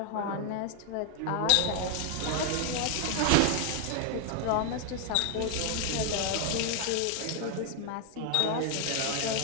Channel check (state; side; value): different; both; correlation 0.00